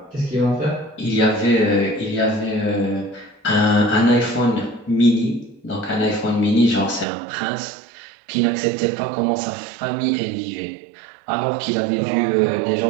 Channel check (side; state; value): left; drops out; at 7.1 s